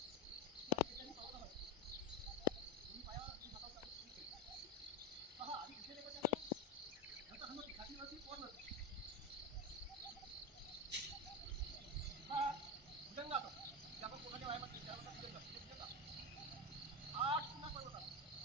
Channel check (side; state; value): both; normal; correlation 0.15